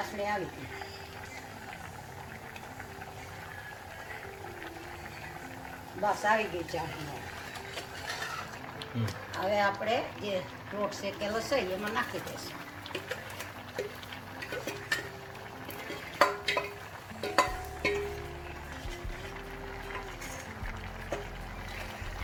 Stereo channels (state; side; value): identical; both; correlation 1.00